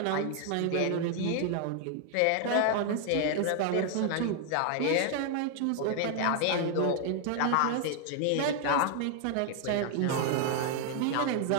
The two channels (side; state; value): both; different; correlation 0.00